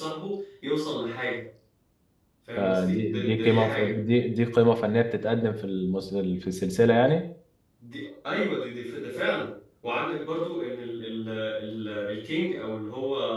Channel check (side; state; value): both; identical; correlation 1.00